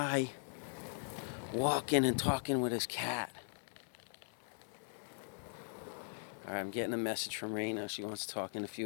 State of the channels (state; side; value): silent; right; digital silence